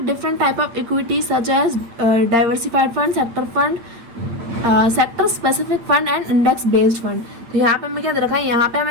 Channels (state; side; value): late; left; 8.5 ms